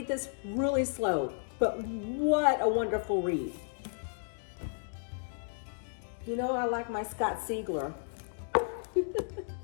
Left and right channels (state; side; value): silent; right; digital silence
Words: this really slow, but what a wonderful read. You know, I like my Scott Siegler.